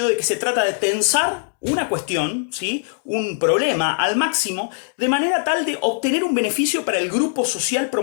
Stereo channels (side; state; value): right; silent; digital silence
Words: de que se trata de tensar una cuestión, ¿sí?, un problema al máximo, de manera tal de obtener un beneficio para el grupo social